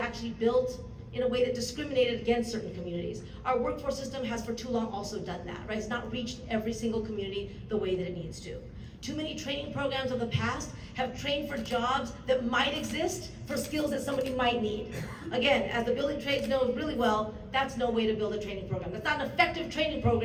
built in a way that discriminated against certain communities. Our workforce system has for too long also done that, right? It's not reached every single community the way that it needs to. Too many training programs of the past have trained for jobs that might exist for skills that somebody might need. Again, as the building trades know really well, that's no way to build a training program. That's not an effective training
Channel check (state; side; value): identical; both; correlation 1.00